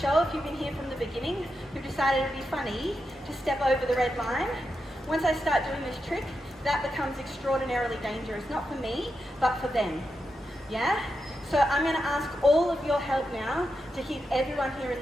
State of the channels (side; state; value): both; normal; correlation 0.87